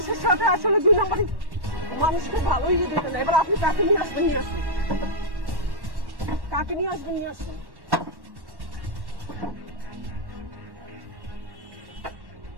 সাথে আসলে 2 নম্বরই, মানুষকে ভালোই দেবে না। এবার আপনি কাকে নিয়ে আসবেন, কাকে নিয়ে আসবেন।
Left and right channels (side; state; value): left; late; 1.1 ms